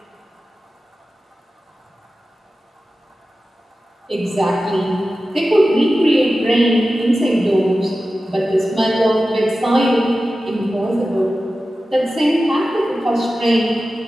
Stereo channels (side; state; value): both; normal; correlation 0.94